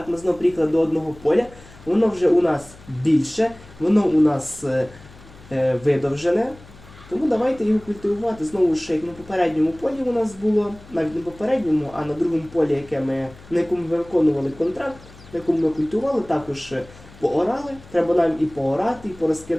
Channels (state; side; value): noise; left; hum, 22 dB below the sound